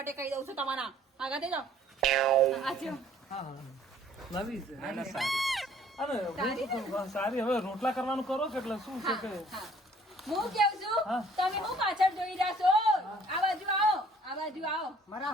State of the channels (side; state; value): both; normal; correlation 0.57